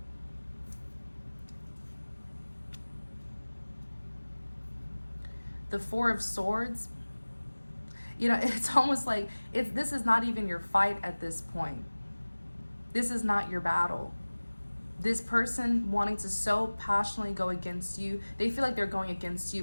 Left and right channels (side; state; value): both; inverted; correlation -1.00